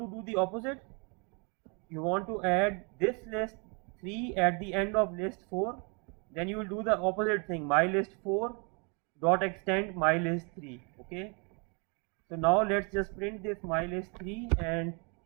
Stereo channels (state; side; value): quieter; left; 34.1 dB